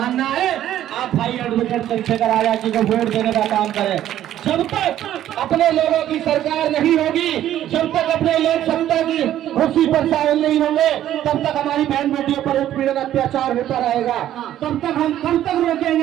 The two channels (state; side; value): quieter; left; 12.1 dB